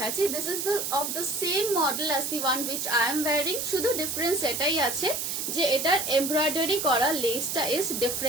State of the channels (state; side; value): noise; right; hiss, 2 dB below the sound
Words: this is of the same model as the one which I am wiring. শুধু ডিফারেন্স এটাই আছে যে এটার এমব্রয়ডারি করা লেসটা ইজ